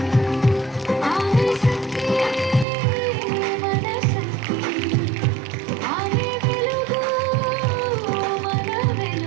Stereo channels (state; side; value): drops out; left; at 2.7 s